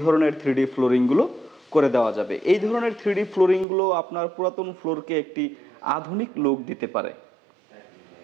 ধরনের 3D ফ্লোরিংগুলো করে দেওয়া যাবে। এই ধরনের 3D ফ্লোরিংগুলো আপনার পুরাতন ফ্লোরকে একটি আধুনিক লুক দিতে পারে।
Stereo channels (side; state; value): left; drops out; at 3.7 s